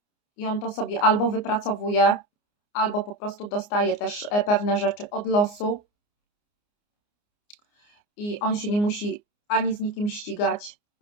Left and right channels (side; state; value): right; late; 29 ms